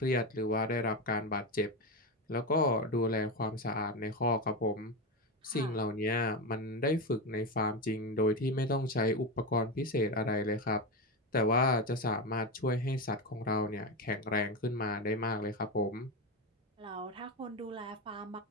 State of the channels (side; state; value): both; normal; correlation 0.16